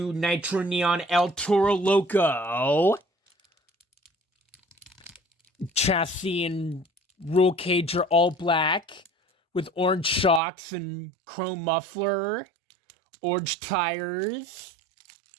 Nitro Neon El Toro Loco. Chassis and roll cage are all black with orange shocks and chrome muffler, orange tires.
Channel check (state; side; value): drops out; left; at 10.4 s